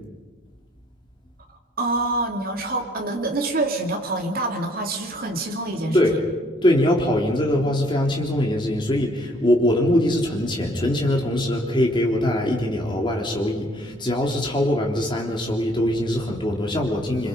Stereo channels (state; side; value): normal; both; correlation 0.62